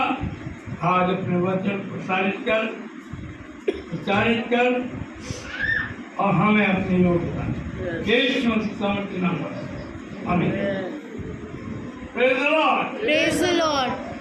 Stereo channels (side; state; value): both; identical; correlation 1.00